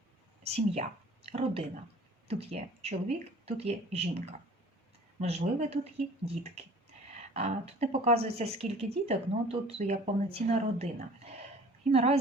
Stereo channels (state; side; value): normal; both; correlation 0.48